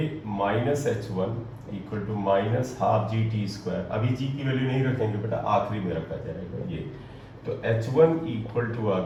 minus h1 equal to minus half g t square. अभी g की वैल्यू नहीं रखेंगे बेटा, आखिरी में रखा जाएगा ये। तो h1 इक्वल टू आ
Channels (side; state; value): both; identical; correlation 1.00